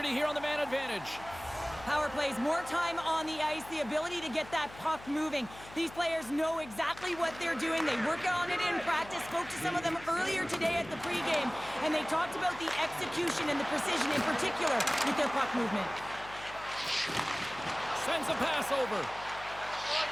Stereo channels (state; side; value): noise; left; hum, 18 dB below the sound